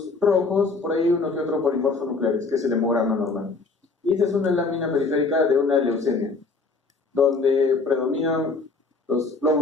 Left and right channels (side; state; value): right; quieter; 4.0 dB